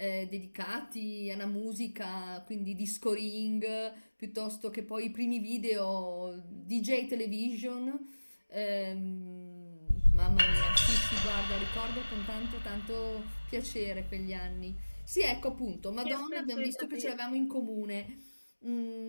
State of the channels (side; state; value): both; inverted; correlation -1.00